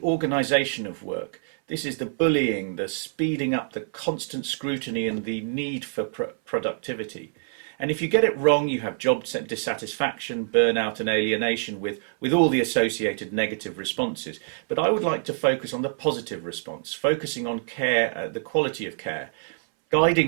organisation of work. This is the bullying, the speeding up, the constant scrutiny and the need for productivity. And if you get it wrong, you have job dissatisfaction, burnout and alienation with all the associated negative responses. But I would like to focus on the positive response, focusing on care, the quality of care,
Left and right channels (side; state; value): left; silent; 61 dB below the other